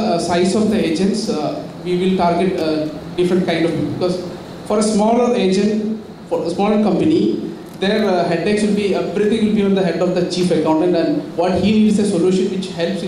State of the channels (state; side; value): identical; both; correlation 1.00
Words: size of the agents, we will target different kind of people, because for a smaller agent, for a smaller company, their headaches will be, everything will be on the head of the chief accountant, and what he needs is a solution which helps